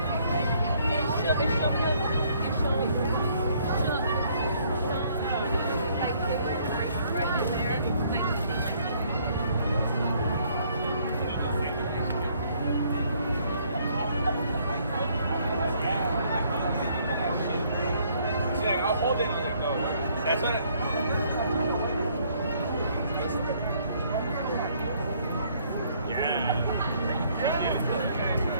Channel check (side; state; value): both; inverted; correlation -0.65